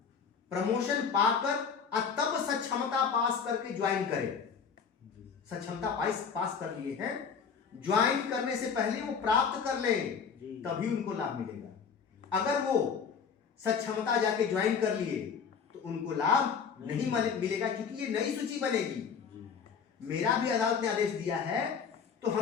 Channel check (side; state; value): right; quieter; 6.3 dB